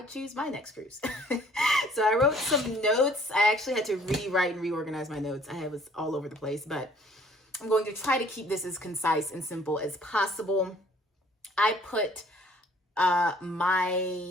choose my next cruise. So I wrote some notes. I actually had to rewrite and reorganize my notes. I was all over the place, but I'm going to try to keep this as concise and simple as possible. I put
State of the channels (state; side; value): normal; both; correlation 0.57